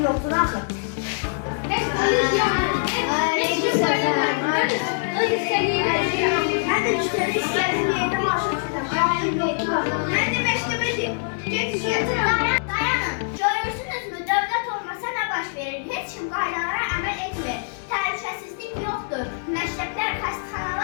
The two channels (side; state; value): right; silent; 63 dB below the other